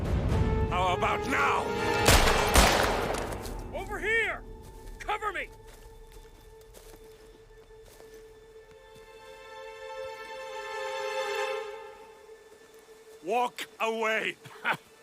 How about now? Over here! Cover me! Walk away!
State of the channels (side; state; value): both; identical; correlation 1.00